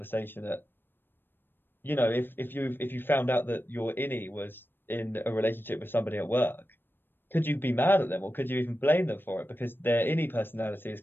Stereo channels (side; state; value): right; late; 0.097 ms